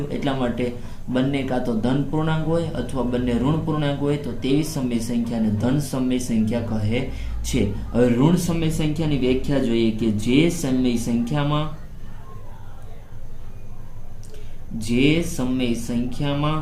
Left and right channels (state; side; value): identical; both; correlation 1.00